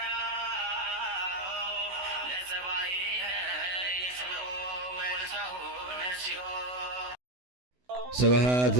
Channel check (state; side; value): late; left; 16 ms